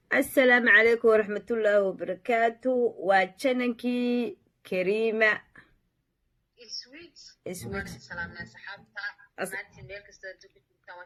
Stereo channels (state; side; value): identical; both; correlation 1.00